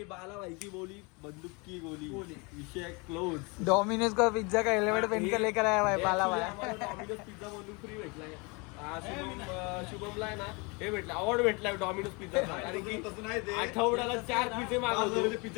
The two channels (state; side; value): quieter; right; 29.5 dB